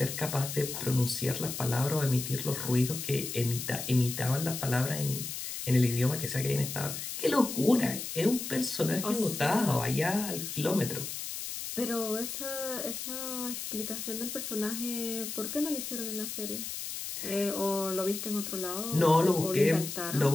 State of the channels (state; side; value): noise; left; hiss, 6 dB below the sound